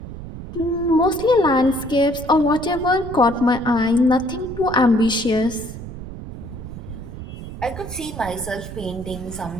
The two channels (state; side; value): noise; right; rumble, 11 dB below the sound